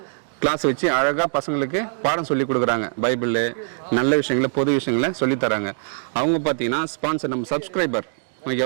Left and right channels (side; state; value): left; silent; digital silence